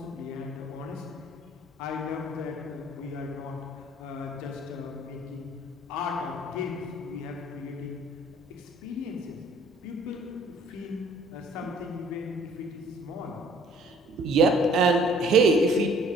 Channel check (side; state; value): both; normal; correlation 0.56